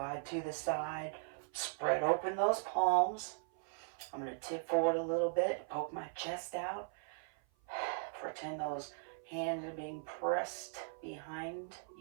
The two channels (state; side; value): silent; left; 52 dB below the other